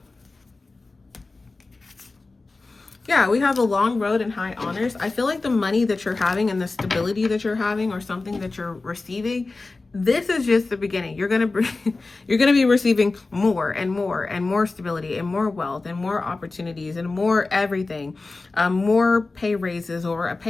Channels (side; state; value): right; quieter; 3.5 dB